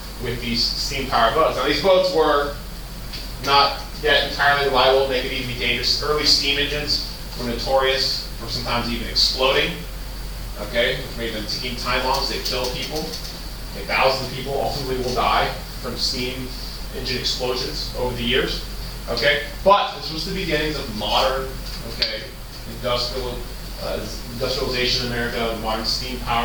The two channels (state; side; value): identical; both; correlation 1.00